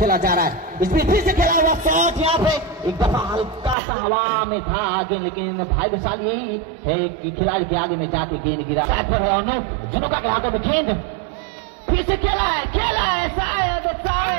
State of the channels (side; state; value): left; drops out; at 3.8 s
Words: जा रहा है। इसमें फिर से खेला हुआ शॉट यहाँ पे एक दफा हल्का सा हवा में था आगे, लेकिन भाग्यशाली यही है कि खिलाड़ी के आगे में जाके गेंद गिरा। दुनुका के हाथों में गेंद फिर से खेला है शायद